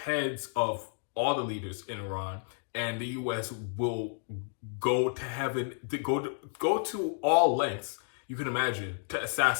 heads of all the leaders in Iran, and the U.S. will go to heaven, go to all lengths you can imagine to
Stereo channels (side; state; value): right; silent; digital silence